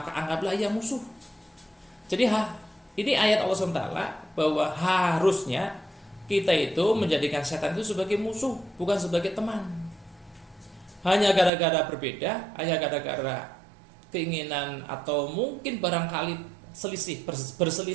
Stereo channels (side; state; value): left; drops out; at 11.5 s